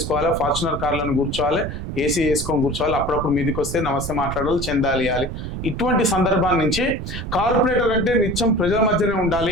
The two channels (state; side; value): noise; right; rumble, 6 dB below the sound